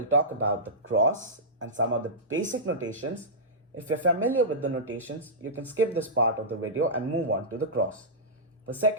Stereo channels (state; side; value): normal; both; correlation -0.15